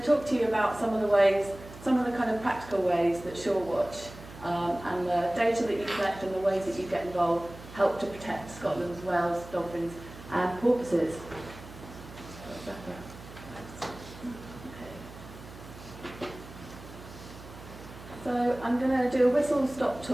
talk to you about some of the kind of practical ways that SureWatch and the data that you collect and the ways that you get involved help to protect Scotland's whales, dolphins and porpoises. So I'm going to do a whistle-stop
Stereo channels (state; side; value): noise; right; hum, 16 dB below the sound